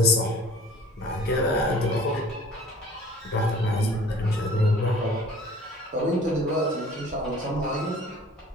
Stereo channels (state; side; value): normal; both; correlation 0.48